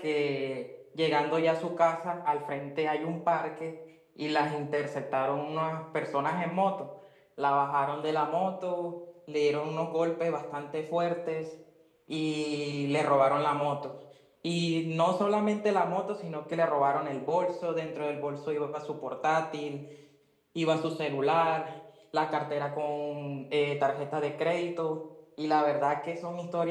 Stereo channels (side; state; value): both; identical; correlation 1.00